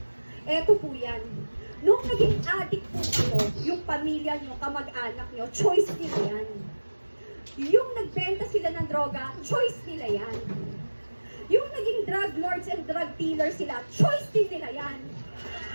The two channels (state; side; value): inverted; both; correlation -1.00